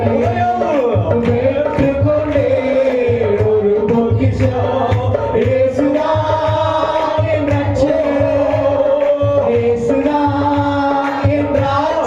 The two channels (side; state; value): both; identical; correlation 1.00